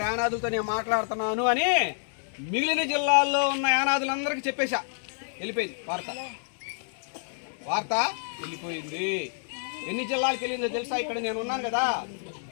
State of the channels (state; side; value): silent; right; 59 dB below the other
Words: యానాదులతో నేను మాట్లాడుతున్నాను అని మిగిలిన జిల్లాల్లో ఉన్న యానాదులందరికీ చెప్పేశా. వెళ్ళిపోయింది వార్త వెళ్ళిపోయింది. ఎన్ని జిల్లాలకు వెళ్ళిందో తెలుసా? ఇక్కడ నేను ఉన్నాను కదా,